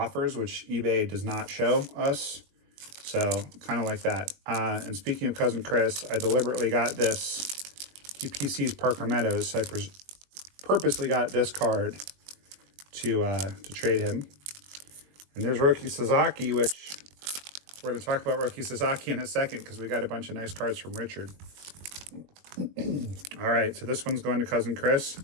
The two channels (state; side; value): late; left; 21 ms